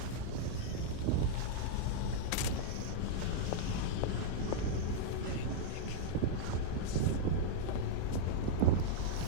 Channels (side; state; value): both; different; correlation -0.02